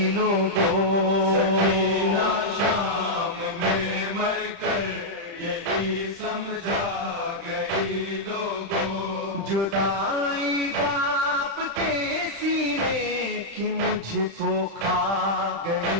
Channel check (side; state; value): left; late; 35 ms